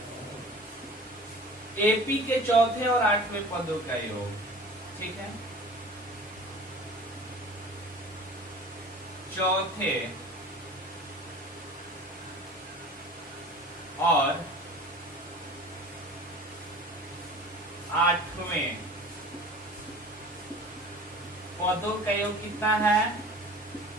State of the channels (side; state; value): both; normal; correlation 0.42